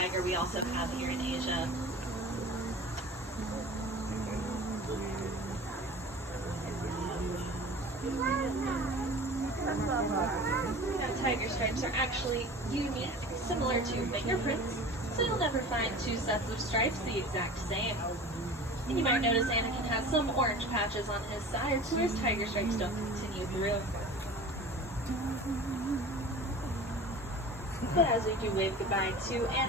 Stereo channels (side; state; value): both; normal; correlation 0.39